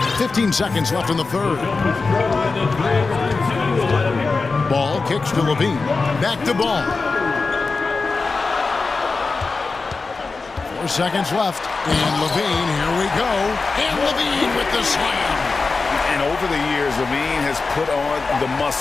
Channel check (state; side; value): quieter; right; 4.1 dB